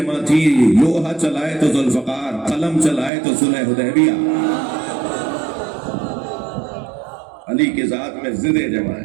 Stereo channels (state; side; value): drops out; left; at 3.1 s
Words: تھی. لوہا چلائے تو ذوالفقار، قلم چلائے تو صلح حدیبیہ. علی کی ذات میں ضدیں جمع